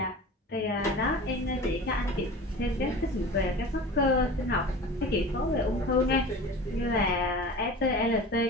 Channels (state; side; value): normal; both; correlation 0.36